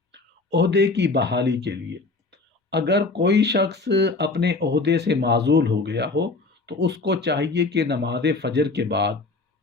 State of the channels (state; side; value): quieter; right; 3.6 dB